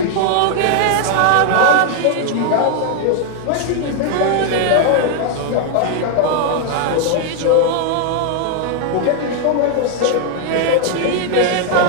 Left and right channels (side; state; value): both; different; correlation 0.00